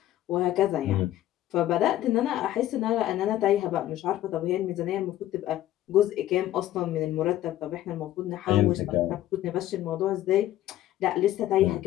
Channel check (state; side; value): quieter; right; 13.6 dB